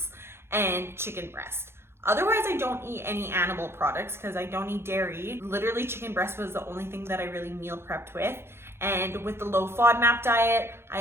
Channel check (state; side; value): late; left; 0.12 ms